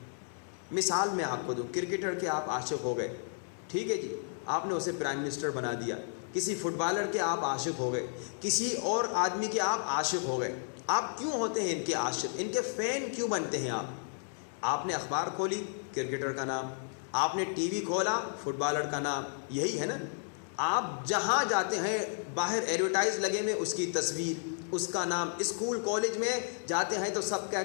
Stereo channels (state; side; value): silent; right; digital silence